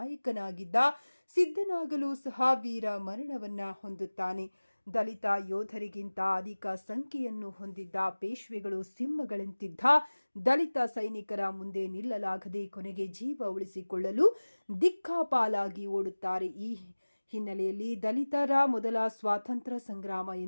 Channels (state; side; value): inverted; both; correlation -1.00